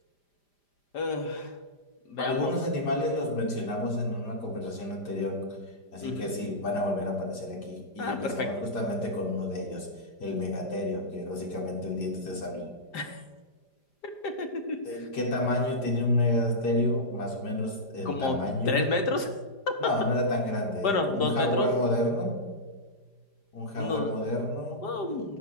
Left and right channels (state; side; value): late; right; 5.0 ms